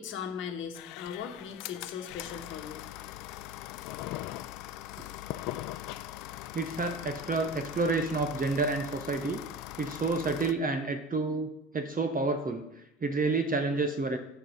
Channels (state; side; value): normal; both; correlation 0.36